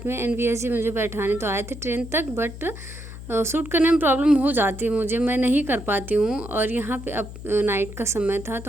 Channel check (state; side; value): noise; left; hum, 12 dB below the sound